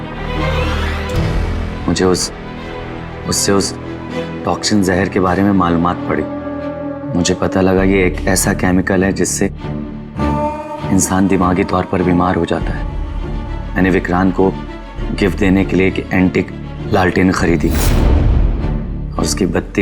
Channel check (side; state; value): both; identical; correlation 1.00